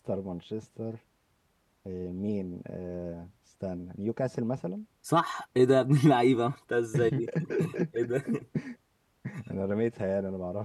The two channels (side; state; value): both; identical; correlation 1.00